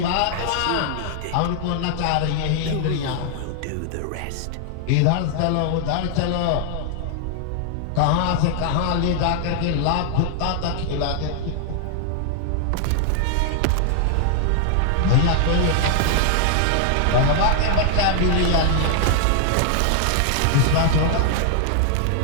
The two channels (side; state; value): both; different; correlation 0.00